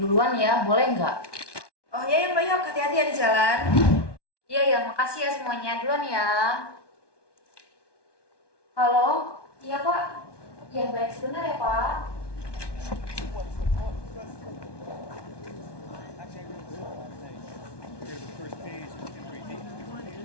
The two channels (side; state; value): right; late; 1.2 ms